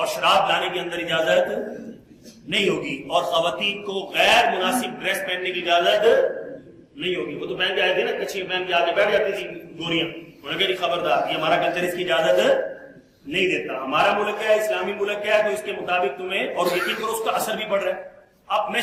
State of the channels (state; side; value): identical; both; correlation 1.00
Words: شراب لانے کے اندر اجازت نہیں ہوگی, اور خواتین کو غیر مناسب ڈریس پہننے کی اجازت نہیں ہوگی. وہ تو پہن کے آئے تھے نا, کچھ پہن کے آگے بیٹھ جاتی تھی گوریاں, انہوں نے کہا خبردار, یہ ہمارا کلچر اس کی اجازت نہیں دیتا, ہمارا ملک ہے, اسلامی ملک ہے, تو اس کے مطابق تمہیں, اور یقین کرو اس کا اثر بھی پڑ رہا ہے. اب میں